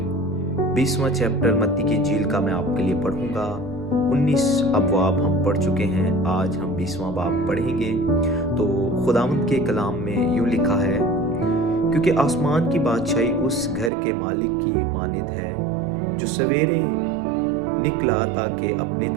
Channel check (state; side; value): drops out; left; at 13.9 s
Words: 20वां चैप्टर मत्ती की इंजील का मैं आपके लिए पढ़ूँगा। 19 अबवाब हम पढ़ चुके हैं, आज हम 20वां बाब पढ़ेंगे। तो खुदावंद के कलाम में यूँ लिखा है, क्योंकि आसमान की बादशाही उस घर के मालिक की मानिद है जो सवेरे निकला ताकि अपने